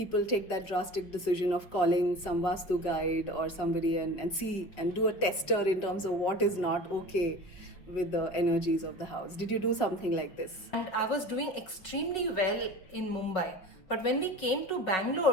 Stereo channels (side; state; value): right; late; 5.6 ms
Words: take that drastic decision of calling some Vastu guide or somebody and see and do a tester in terms of what is not okay with the energies of the house. Did you do something like this? And I was doing extremely well in Mumbai. But when we came to